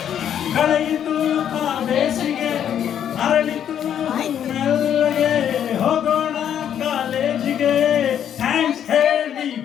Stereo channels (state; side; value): quieter; right; 9.5 dB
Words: ಕಳೆಯಿತು ಆ ಬೇಸಿಗೆ, ಅರಳಿತು ಮೆಲ್ಲಗೆ, ಹೋಗೋಣ ಕಾಲೇಜಿಗೆ, ಥ್ಯಾಂಕ್ಸ್ ಹೇಳಿ